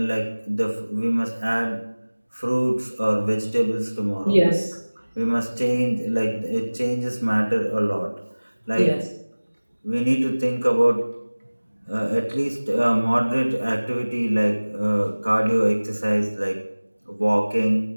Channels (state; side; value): inverted; both; correlation -1.00